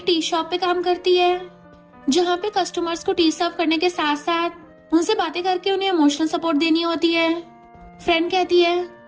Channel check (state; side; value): identical; both; correlation 1.00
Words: टी शॉप पे काम करती है, जहाँ पे कस्टमर्स को टी सर्व करने के साथ साथ उनसे बातें करके उन्हें इमोशनल सपोर्ट देनी होती है। फ्रेंड कहती है,